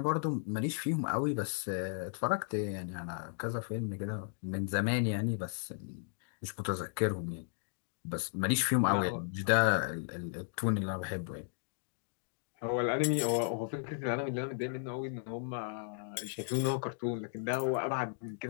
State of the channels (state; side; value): silent; right; digital silence